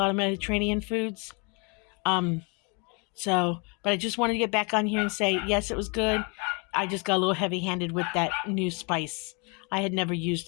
of Mediterranean foods. But I just wanted to get back on here and say, yes, it was good. I just got a little heavy-handed with that new spice. I had never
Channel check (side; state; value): right; quieter; 32.6 dB